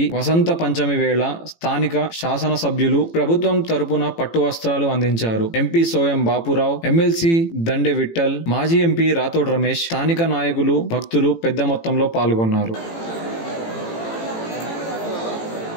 వసంత పంచమి వేళ స్థానిక శాసనసభ్యులు ప్రభుత్వం తరపున పట్టు వస్త్రాలు అందించారు. ఎంపీ సోయం బాపురావు, ఎమ్మెల్సీ దండే విఠల్, మాజీ ఎంపీ రాథోడ్ రమేష్, స్థానిక నాయకులు, భక్తులు పెద్ద మొత్తంలో పాల్గొన్నారు.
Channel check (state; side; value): late; right; 18 ms